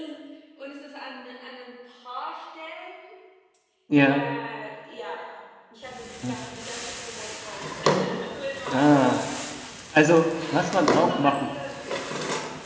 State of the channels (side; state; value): both; identical; correlation 1.00